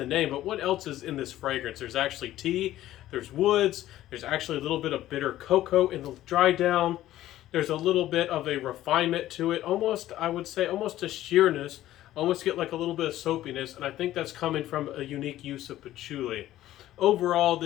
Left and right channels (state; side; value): quieter; right; 14.0 dB